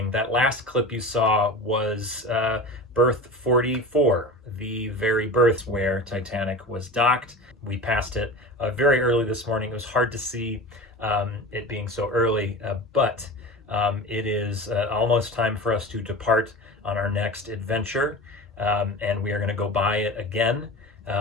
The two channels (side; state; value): both; normal; correlation 0.32